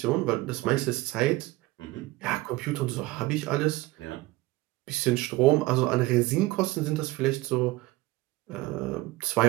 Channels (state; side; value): quieter; left; 19.5 dB